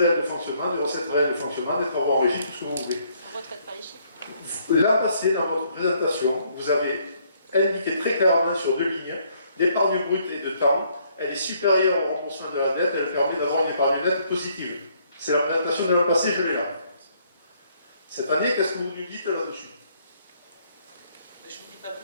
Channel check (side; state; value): both; inverted; correlation -0.67